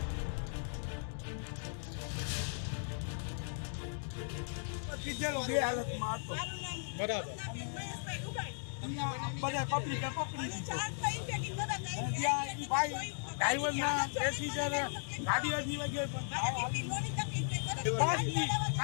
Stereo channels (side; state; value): right; silent; digital silence